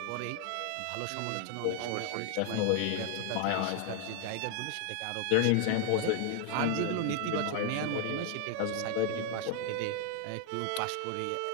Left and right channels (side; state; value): both; different; correlation 0.00